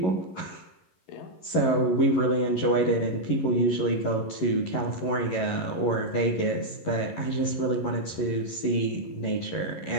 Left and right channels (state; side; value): late; right; 11 ms